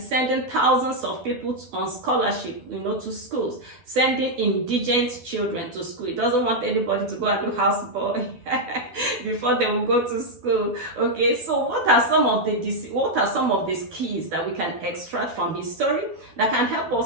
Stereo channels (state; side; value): late; left; 12 ms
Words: sending thousands of people on scholarship, to schools, sending indigent children to school. He doesn't want anybody to go and do houseboy before they will go to school, okay? So what are some of these keys that we can extract from his story that can help